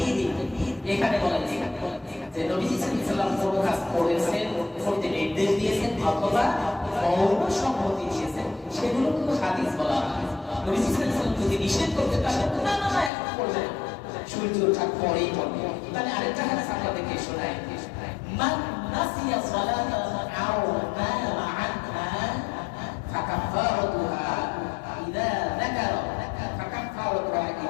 এখানে বলা হয়েছে যে নবীজি সাল্লাল্লাহু আলাইহি ওয়াসাল্লাম কোন কাজ করেছেন, করতে নির্দেশ দিয়েছেন অথবা মৌন সম্মতি দিয়েছেন, সেগুলো কিন্তু হাদিস বলা হয়। নবীজি সাল্লাল্লাহু আলাইহি ওয়াসাল্লাম যদি নিষেধ করতে তাহলে না না না এখন করবে না, সূর্য ওঠার পরেই করবে। তাহলে আরেকটা হাদিস আপনাদেরকে শোনাই, মান নাসিয়া সালাতান আও নামা আনহা ফাকাফারাতুহা ইযা যাকারা ফাকাফারাতুহা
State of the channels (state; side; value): drops out; right; at 13.1 s